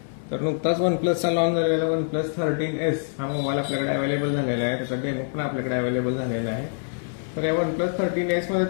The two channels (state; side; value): silent; right; digital silence